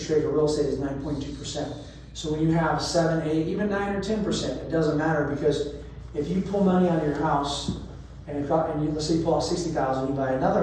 rate for real estate is 9.2%. So when you have 7, 8, even 9 or 10%, it doesn't matter, because if you pull money out of your house, let's say you pull out $60,000, you buy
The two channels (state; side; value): identical; both; correlation 1.00